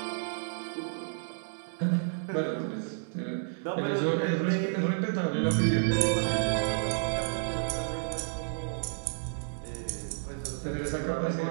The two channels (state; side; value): silent; left; digital silence